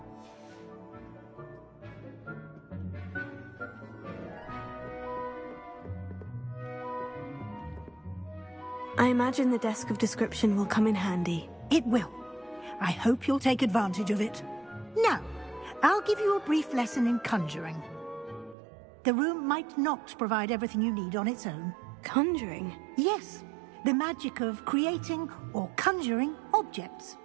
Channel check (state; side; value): drops out; left; at 18.6 s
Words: I imagine the desk of description will come in handy. It will. I hope you'll take advantage of it. Now, I'll give you a brief lesson in conjuring. The room might not provide everything you need on its own. Conjuring? Yes, the magic of creating or conjuring objects.